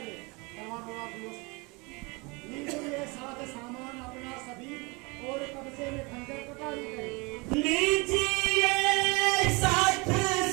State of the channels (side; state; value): left; quieter; 27.5 dB